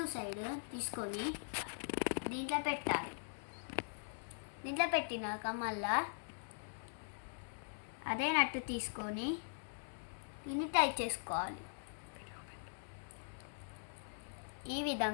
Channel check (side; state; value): right; silent; digital silence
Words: సైడ్ తీసుకొని దీంట్లో పెట్టాలి. దీంట్లో పెట్టినాక మళ్ళా అదే నట్టు తీసుకొని దీన్ని టైట్ చేసుకోవాలి. ఈ